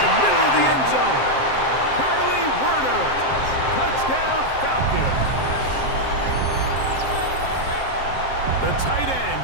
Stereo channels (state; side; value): late; right; 7.6 ms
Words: middle of the end zone. Curly Werner, touchdown Falcons. The tight end